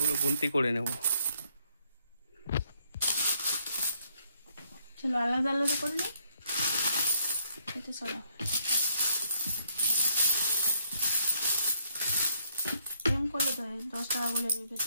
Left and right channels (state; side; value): inverted; both; correlation -0.70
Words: গুনতি করে নেব। চলো আলাদা আলাদা করে নিই। এটা সরা এরকম করলে তো 10 টাকা বলে